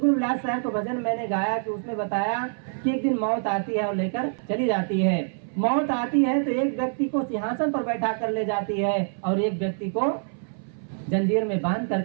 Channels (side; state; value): left; silent; 61 dB below the other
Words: विलास साहब को भजन मैंने गाया कि उसमें बताया कि एक दिन मौत आती है और लेकर चली जाती है। मौत आती है तो एक व्यक्ति को सिंहासन पर बैठा कर ले जाती है और एक व्यक्ति को जंजीर में बांध